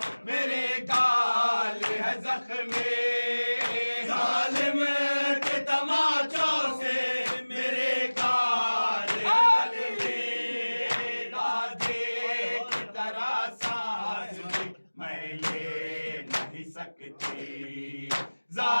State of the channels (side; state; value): both; inverted; correlation -1.00